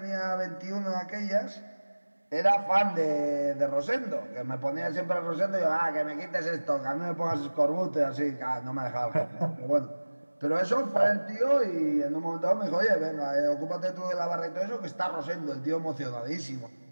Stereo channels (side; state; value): both; inverted; correlation -1.00